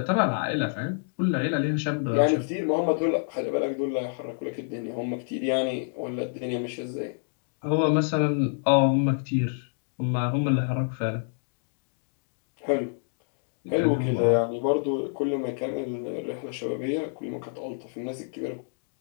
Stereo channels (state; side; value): silent; right; digital silence